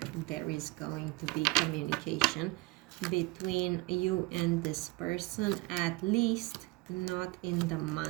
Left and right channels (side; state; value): left; quieter; 22.9 dB